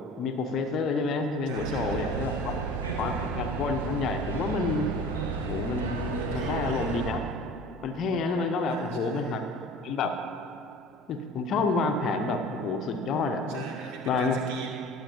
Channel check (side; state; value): both; normal; correlation 0.41